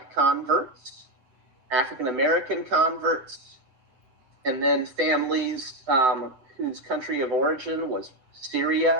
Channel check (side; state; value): left; late; 7.9 ms